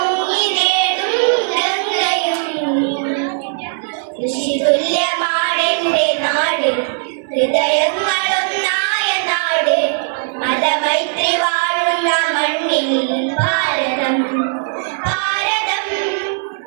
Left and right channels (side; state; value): left; silent; 68 dB below the other